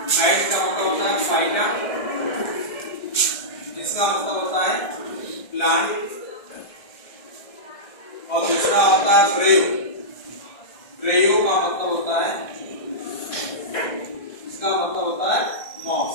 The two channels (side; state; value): right; late; 1.6 ms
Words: फाइट का मतलब होता है फाइटा, इसका मतलब होता है प्लांट, और दूसरा होता है ब्रेव। ब्रेव का मतलब होता है, इसका मतलब होता है